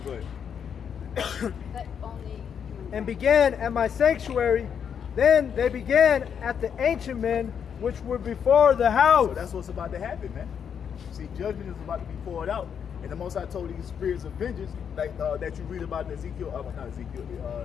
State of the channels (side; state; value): right; quieter; 7.7 dB